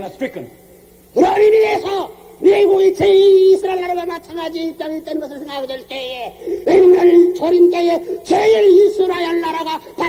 stricken. 그런 의미에서 미국이 제2이스라엘 나라가 마찬가지 입장이 있다는 것을 생각하게 될 때에 오늘 조림 때에 제1이스라엘 나라가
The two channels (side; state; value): both; identical; correlation 1.00